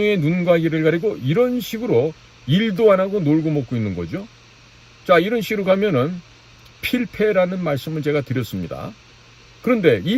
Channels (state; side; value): identical; both; correlation 1.00